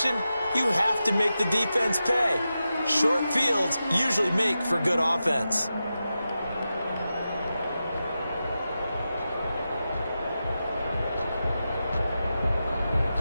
you have to make the defense pay. Short fields usually make for good offense.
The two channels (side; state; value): both; inverted; correlation -0.91